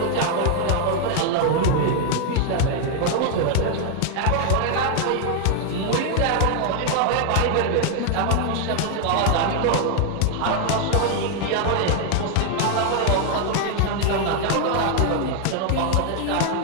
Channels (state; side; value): different; both; correlation 0.00